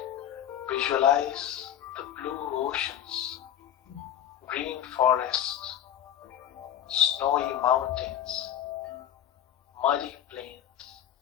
Visualize the blue oceans, green forests, snowy mountains, muddy plains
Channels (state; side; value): quieter; right; 10.8 dB